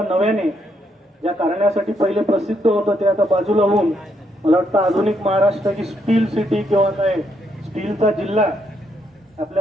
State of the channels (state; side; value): normal; both; correlation 0.76